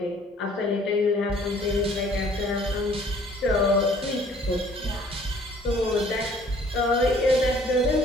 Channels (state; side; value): normal; both; correlation 0.56